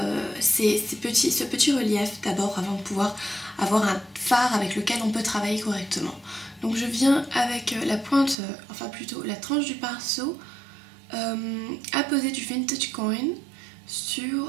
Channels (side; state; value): left; drops out; at 8.3 s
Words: petit relief d'abord avant de pouvoir avoir un fard avec lequel on peut travailler correctement. Donc je viens avec la pointe, enfin plutôt la tranche du pinceau, apposer du Vintage Coin